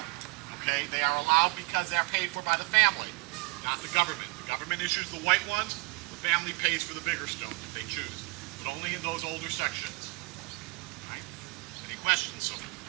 Okay, they are allowed because they're paid for by the family, not the government. The government issues the white ones. The family pays for the bigger stones if they choose, but only in those older sections. Right? Any questions?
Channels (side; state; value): left; quieter; 28.7 dB